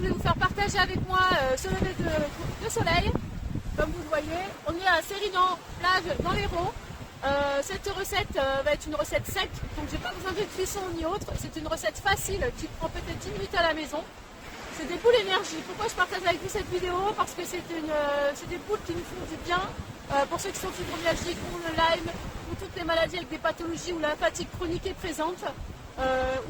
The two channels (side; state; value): both; identical; correlation 1.00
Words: vous faire partager avec moi ce lever de soleil. Comme vous le voyez, on est à Sérinan, plage dans l'Hérault. Cette recette va être une recette sec, donc j'ai pas besoin de cuisson ni autre. C'est une recette facile qui prend peut-être 10 minutes à la maison. C'est des boules énergie. Pourquoi je partage avec vous cette vidéo? Parce que c'est des boules qui nous font du bien. Pour ceux qui sont fibromyalgiques, pour le Lyme, pour toutes les maladies avec des pathologies où la fatigue chronique est présente,